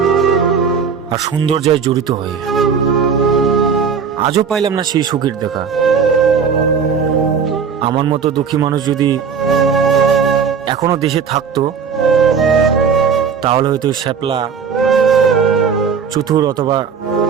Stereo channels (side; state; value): left; quieter; 6.4 dB